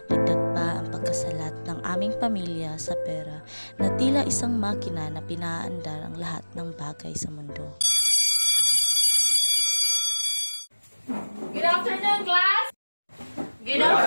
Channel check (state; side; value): inverted; both; correlation -1.00